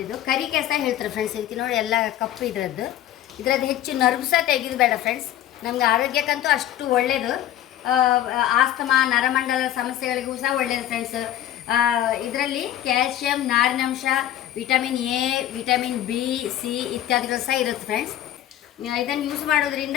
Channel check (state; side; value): quieter; right; 12.1 dB